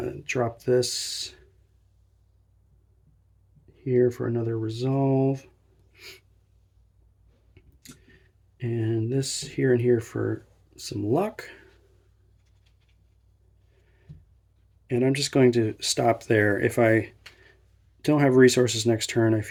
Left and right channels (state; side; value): identical; both; correlation 1.00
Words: Drop this here for another resolve. And this here and here for some luck. And I'm just going to stop there. If I don't have resources next turn, I